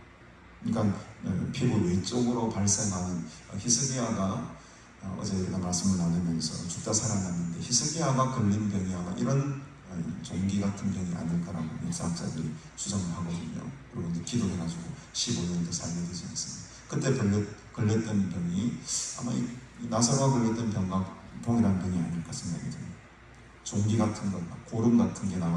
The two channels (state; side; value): identical; both; correlation 1.00